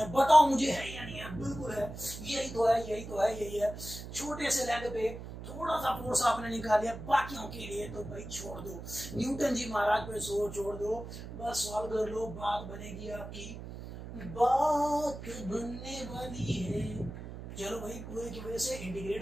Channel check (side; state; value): right; noise; hum, 10 dB below the sound